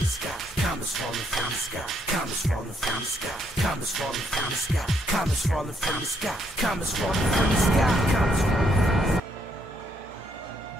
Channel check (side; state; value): both; normal; correlation 0.73